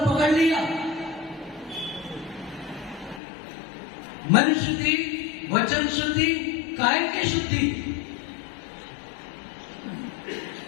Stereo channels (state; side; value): drops out; right; at 3.2 s